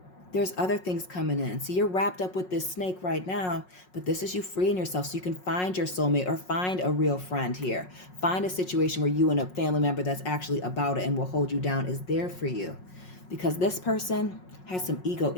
There's other things coming in. So you're wrapped up with this snake right now, but this is you freeing yourself so you can find your soulmate or find a real friend here. Find a situation where you and a family member that's actually about it and will hold you down is there for you. Because this person has some ego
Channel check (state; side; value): late; right; 5.5 ms